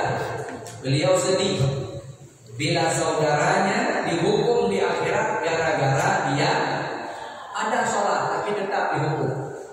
beliau sedih bila saudaranya dihukum di akhirat gara-gara dia ada sholat tapi tetap dihukum.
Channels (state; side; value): identical; both; correlation 1.00